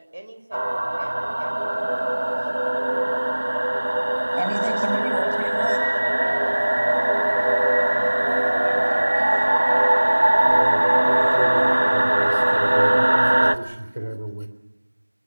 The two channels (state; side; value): inverted; both; correlation -1.00